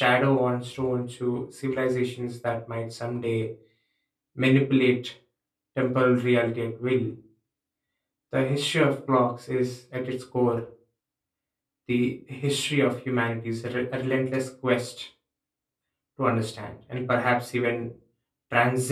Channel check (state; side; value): identical; both; correlation 1.00